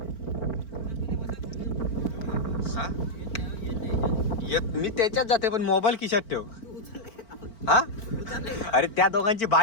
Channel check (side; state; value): right; late; 4.4 ms